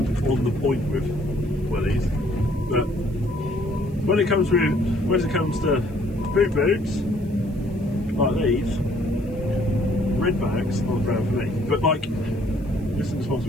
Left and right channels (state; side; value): noise; right; hiss, 29 dB below the sound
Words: the point with wellies, but when it comes to boot boots like these, red bags aren't brown for me. But like, this is a